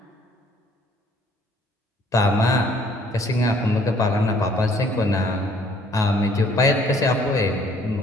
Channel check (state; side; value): normal; both; correlation 0.60